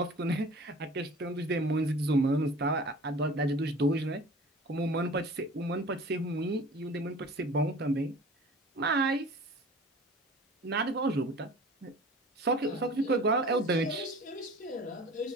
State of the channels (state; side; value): normal; both; correlation 0.43